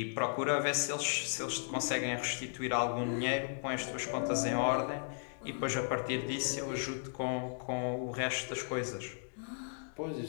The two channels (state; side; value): silent; right; digital silence